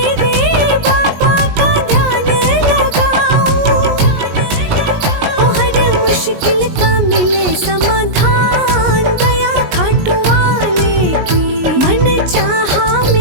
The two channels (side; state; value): left; late; 19 ms